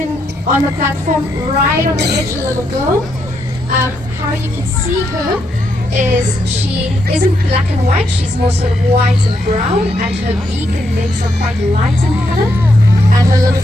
on the platform right on the edge, a little girl. How you can see her is she isn't black and white, she's more sort of white and brown, and her beak and legs are quite light in color, and her little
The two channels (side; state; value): both; normal; correlation 0.79